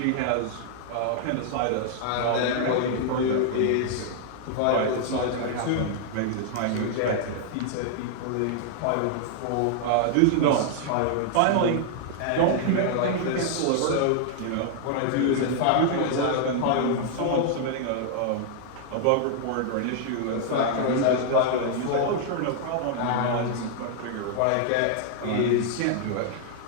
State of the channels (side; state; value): both; different; correlation -0.01